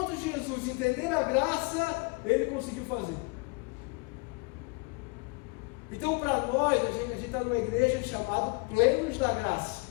de Jesus, entender a graça, ele conseguiu fazer. Então, para nós, a gente está numa igreja chamada Plenos da Graça.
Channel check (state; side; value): quieter; right; 28.6 dB